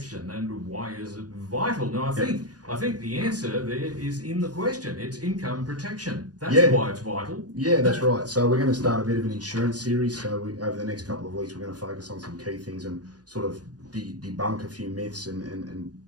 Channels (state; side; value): late; left; 0.69 ms